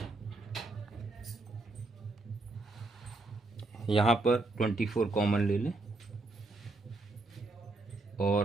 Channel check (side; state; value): left; quieter; 3.1 dB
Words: यहाँ पर 24 कॉमन ले लें